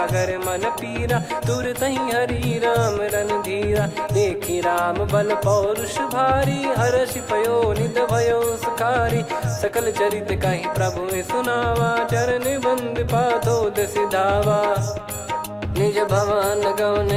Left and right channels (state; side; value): identical; both; correlation 1.00